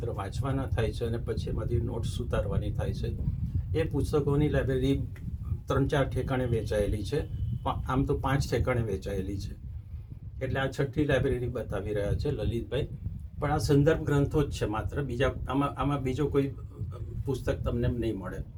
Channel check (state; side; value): identical; both; correlation 1.00